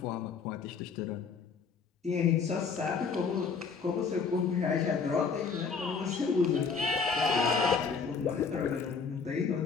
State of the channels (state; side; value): quieter; right; 5.4 dB